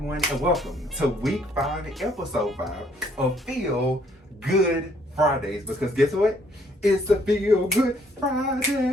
and welcome to week 5, episode 5 of Feel Good Fridays, because guess what? It's a Feel Good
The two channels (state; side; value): normal; both; correlation 0.65